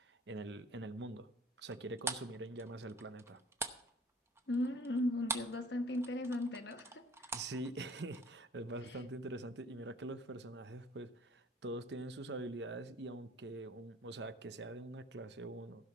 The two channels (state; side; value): normal; both; correlation 0.52